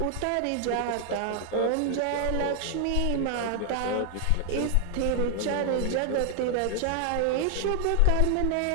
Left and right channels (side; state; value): both; different; correlation 0.00